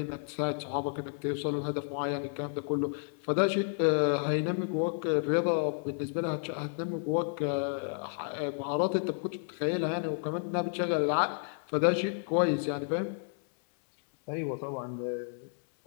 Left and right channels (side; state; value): right; silent; digital silence